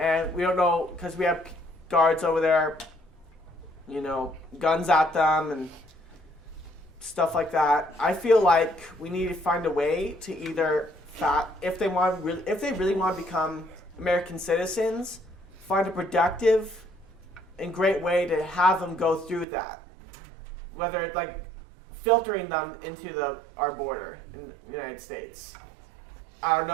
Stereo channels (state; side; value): drops out; left; at 19.5 s